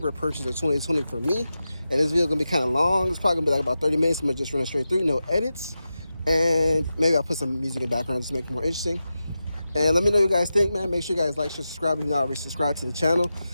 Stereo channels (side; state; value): both; inverted; correlation -0.92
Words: purchase of 2020 for me. And this video gonna be kind of long. It's probably gonna be like about 30 minutes. I'm gonna just run it straight through, no edits. And maybe I'll put some music in the background just to make it more interesting. And let me know what you guys think, man. Make sure you guys like, share, subscribe if you're not already subscribed to the channel.